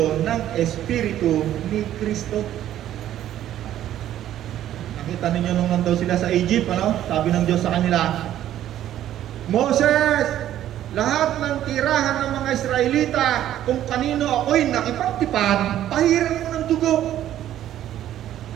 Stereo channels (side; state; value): left; quieter; 12.1 dB